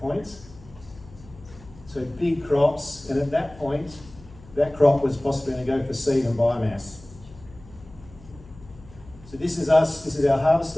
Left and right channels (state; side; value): noise; left; hum, 21 dB below the sound